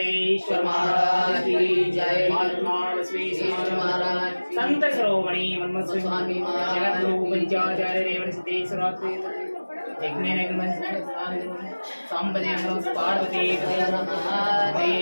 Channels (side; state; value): both; inverted; correlation -1.00